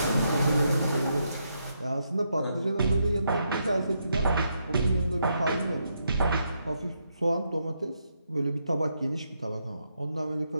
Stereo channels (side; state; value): both; inverted; correlation -0.80